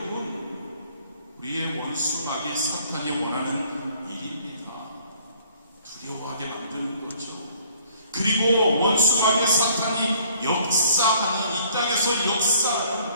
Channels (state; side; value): inverted; both; correlation -0.58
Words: 우리의 원수 마귀 사탄이 원하는 일입니다. 두려워하게 만드는 거죠. 그리고 원수 마귀 사탄이 역사하는, 이 땅에서 역사하는